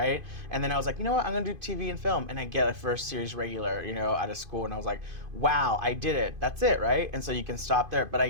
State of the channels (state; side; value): late; left; 2.5 ms